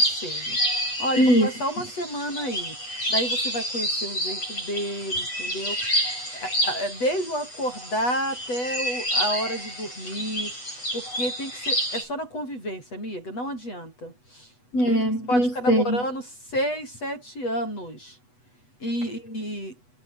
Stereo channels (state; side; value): late; right; 8.1 ms